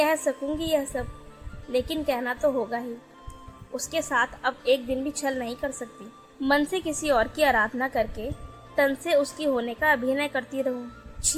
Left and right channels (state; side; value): identical; both; correlation 1.00